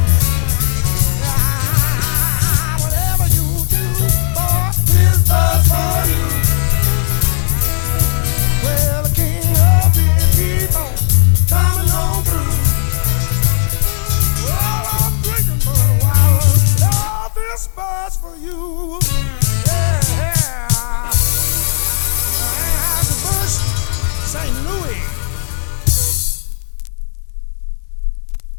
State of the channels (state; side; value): silent; right; digital silence